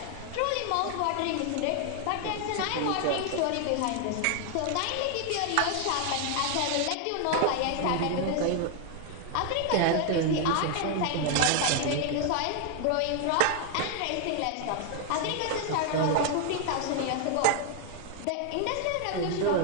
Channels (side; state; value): both; different; correlation 0.00